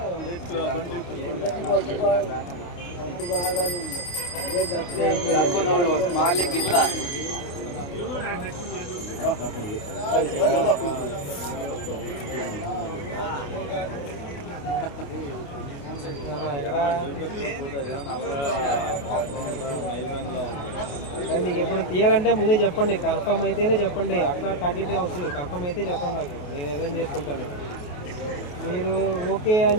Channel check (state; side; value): late; right; 28 ms